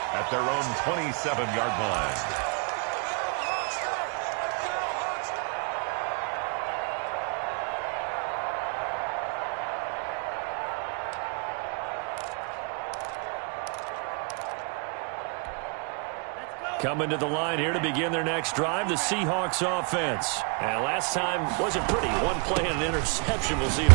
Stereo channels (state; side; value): quieter; left; 35.4 dB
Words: at their own 27-yard line. Coming to the line here to begin their next drive, the Seahawks offense. And last time wasn't pretty. One play and an interception. We'll see if